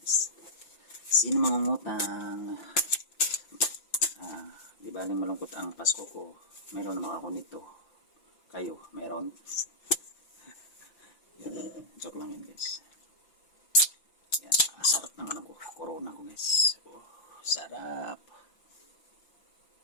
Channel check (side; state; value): right; late; 5.9 ms